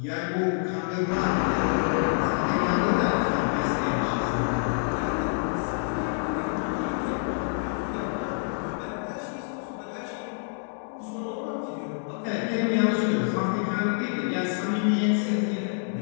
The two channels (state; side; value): silent; right; digital silence